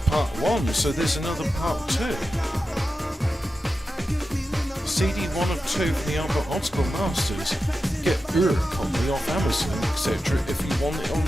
1, so there's another part 2. CD 1 of 2 for the Albert Optical Masters. Get your copy off Amazon, etc. if you want it on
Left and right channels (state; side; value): normal; both; correlation 0.91